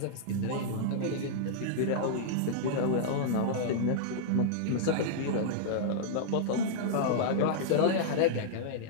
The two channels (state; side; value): different; both; correlation -0.02